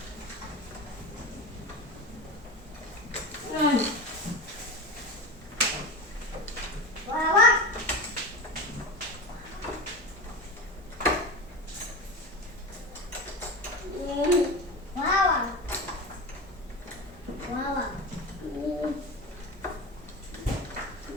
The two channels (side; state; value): both; normal; correlation 0.25